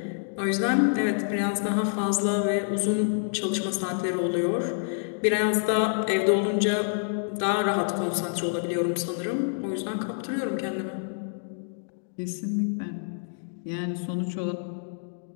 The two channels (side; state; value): right; silent; digital silence